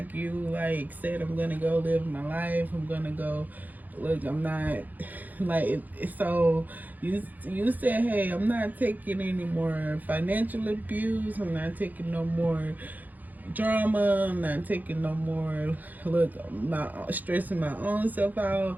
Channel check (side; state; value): left; late; 0.083 ms